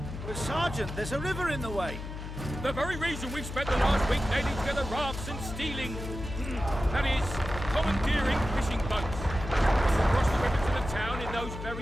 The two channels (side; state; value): left; noise; hum, 8 dB below the sound